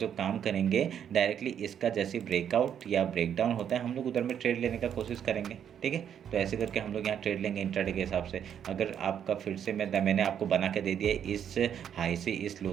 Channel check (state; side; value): quieter; left; 8.9 dB